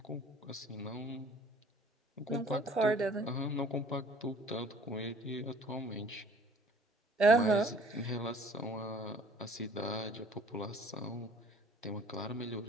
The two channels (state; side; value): normal; both; correlation 0.53